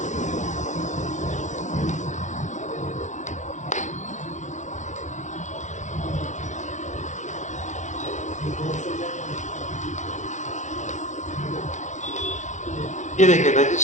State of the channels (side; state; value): right; late; 0.35 ms